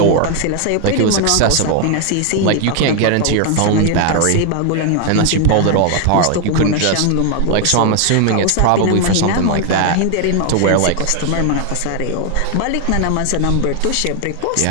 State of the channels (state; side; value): different; both; correlation 0.01